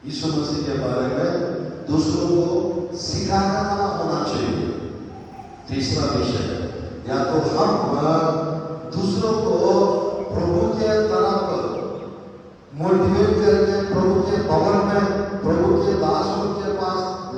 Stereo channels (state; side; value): identical; both; correlation 1.00